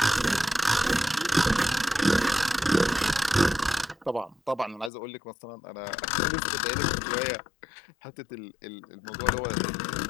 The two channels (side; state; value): right; drops out; at 4.9 s